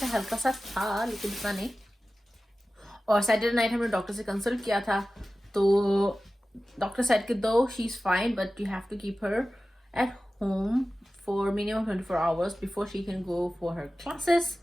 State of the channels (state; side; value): normal; both; correlation 0.95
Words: हल्का सा था लेकिन इतना नहीं। और सैटरडे नाइट हमने डॉक्टर से कंसल्ट किया था, तो डॉक्टर सेड कि दो she is fine but you have to keep her at home for minimum 24 hours before she can go for her classes.